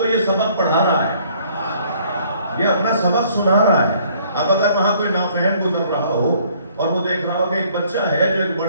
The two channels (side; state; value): both; inverted; correlation -0.61